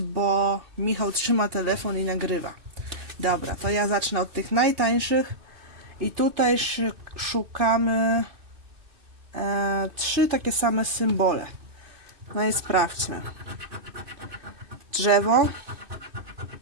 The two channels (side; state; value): left; late; 2.6 ms